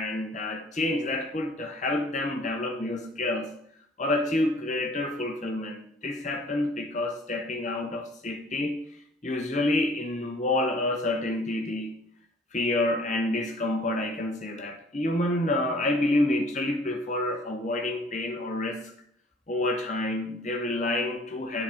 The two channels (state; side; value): normal; both; correlation 0.53